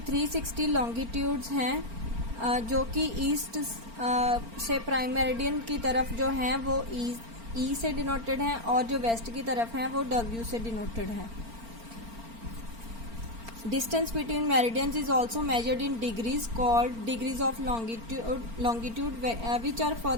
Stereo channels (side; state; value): left; late; 4.4 ms